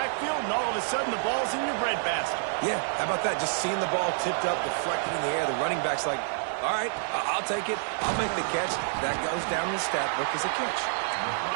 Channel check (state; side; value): silent; left; 59 dB below the other